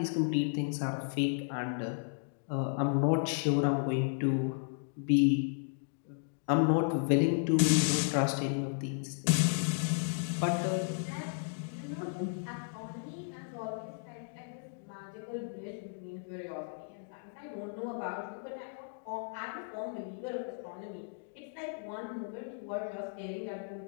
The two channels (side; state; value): right; silent; digital silence